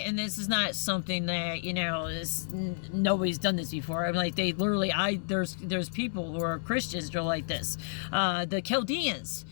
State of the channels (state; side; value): silent; right; digital silence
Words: and this is not something that, nobody's done this before. I'm like, they literally, there's people who are Christians who are like this. The Chaldeans